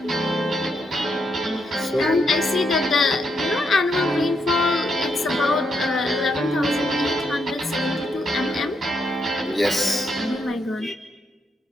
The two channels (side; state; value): both; normal; correlation 0.79